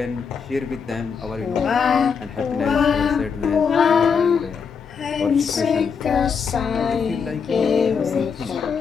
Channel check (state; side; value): quieter; right; 6.2 dB